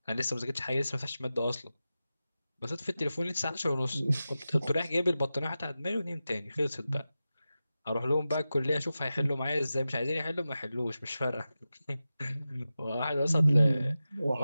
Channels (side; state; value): both; inverted; correlation -0.93